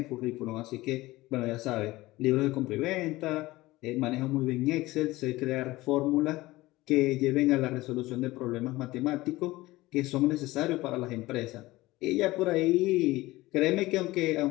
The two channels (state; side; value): quieter; right; 18.9 dB